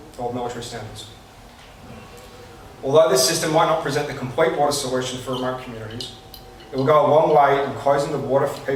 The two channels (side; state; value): both; identical; correlation 1.00